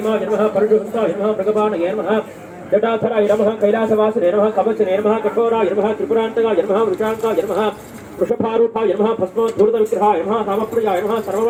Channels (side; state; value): both; identical; correlation 1.00